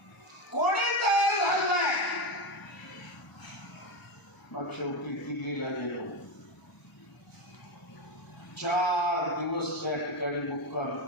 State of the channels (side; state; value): right; late; 1.0 ms